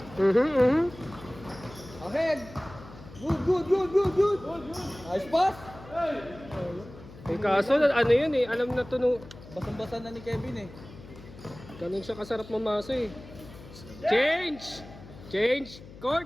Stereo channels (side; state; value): left; noise; hum, 18 dB below the sound